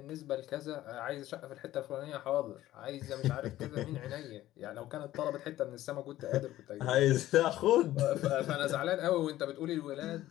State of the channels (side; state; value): right; quieter; 14.6 dB